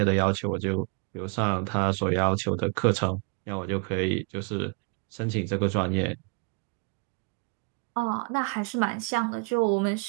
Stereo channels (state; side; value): quieter; left; 33.3 dB